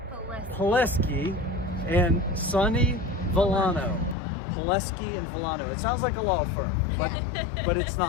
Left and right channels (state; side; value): drops out; right; at 4.2 s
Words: Pileski and Sonny Volano. Pileski and Volano. It sounds like a law firm, but it's